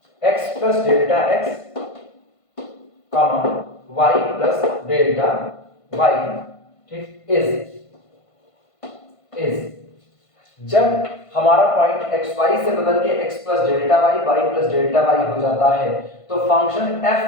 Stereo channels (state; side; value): late; right; 1.5 ms